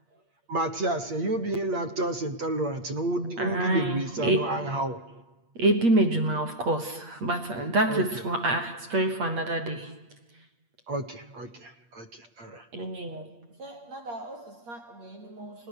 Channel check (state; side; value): late; left; 8.5 ms